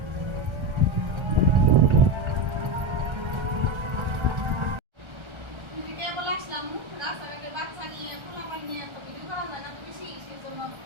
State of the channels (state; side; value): late; left; 1.3 ms